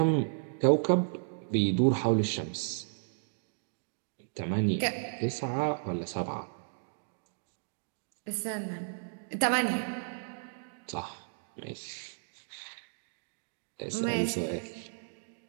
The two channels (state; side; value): silent; left; digital silence